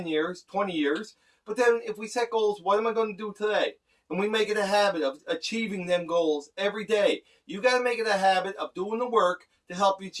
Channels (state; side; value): identical; both; correlation 1.00